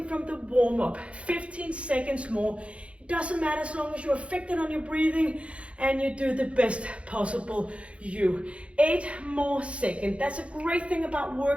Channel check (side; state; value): left; late; 0.061 ms